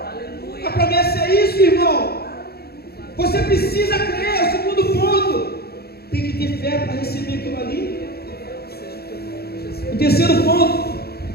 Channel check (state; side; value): late; right; 0.46 ms